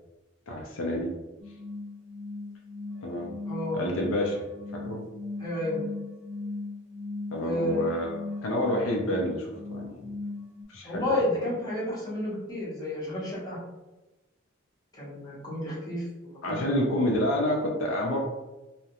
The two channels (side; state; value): both; normal; correlation 0.31